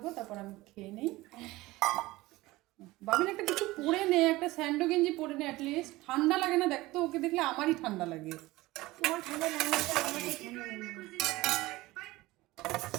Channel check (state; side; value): quieter; left; 19.3 dB